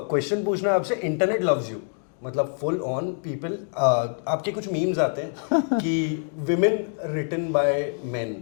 पूछना है आपसे. इंटरनेट लव्स यू, मतलब फुल ऑन पीपल. आपके कुछ मीम्स आते हैं कि विमेन रिटन बाय मेन,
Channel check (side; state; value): right; silent; 62 dB below the other